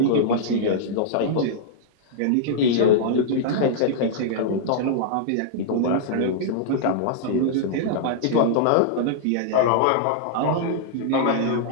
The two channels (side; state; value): both; different; correlation -0.02